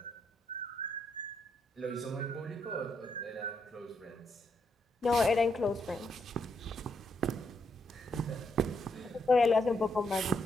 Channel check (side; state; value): both; normal; correlation 0.78